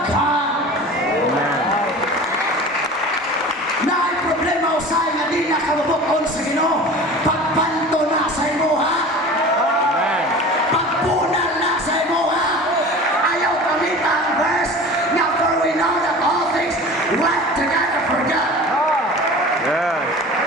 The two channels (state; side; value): normal; both; correlation 0.38